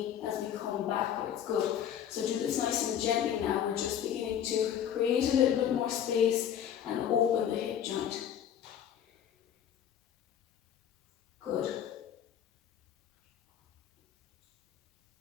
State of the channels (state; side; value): quieter; right; 9.5 dB